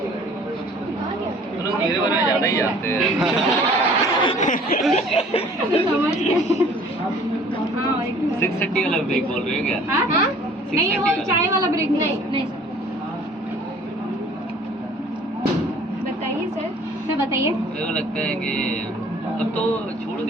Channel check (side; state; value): both; normal; correlation 0.52